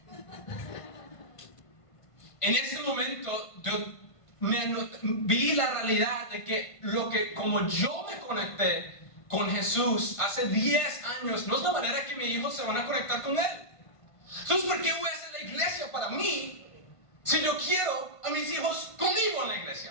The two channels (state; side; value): late; right; 1.5 ms